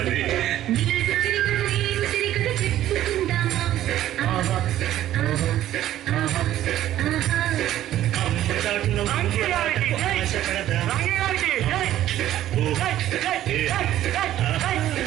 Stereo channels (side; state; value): left; quieter; 12.9 dB